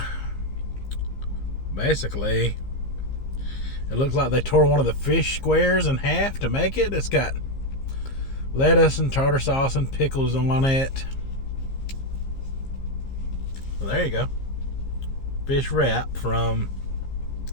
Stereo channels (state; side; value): late; right; 15 ms